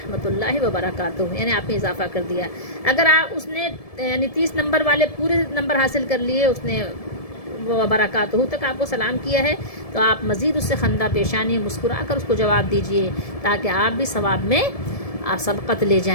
اللہ وبرکاتہ، یعنی آپ نے اضافہ کر دیا. اگر اس نے یعنی 30 نمبر والے پورے نمبر حاصل کر لیے، اس نے وبرکاتہ تک آپ کو سلام کیا ہے، تو آپ مزید اس سے خندہ پیشانی مسکرا کر اس کو جواب دیجئے، تاکہ آپ بھی ثواب میں آپ سبقت لے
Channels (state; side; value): late; right; 1.7 ms